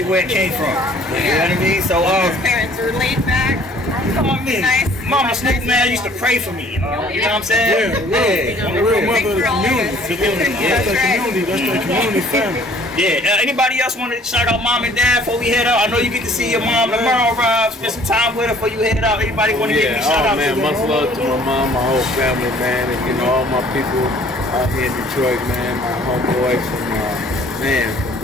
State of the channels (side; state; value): both; normal; correlation 0.55